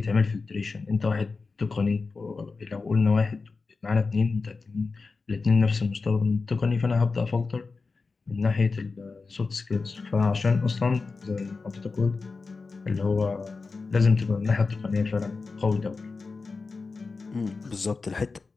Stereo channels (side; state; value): right; quieter; 4.2 dB